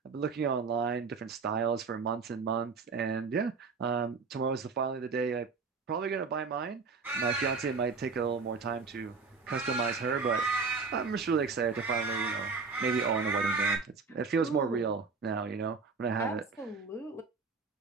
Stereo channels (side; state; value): left; quieter; 4.8 dB